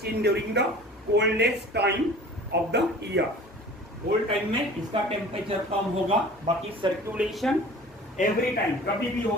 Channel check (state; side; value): normal; both; correlation 0.43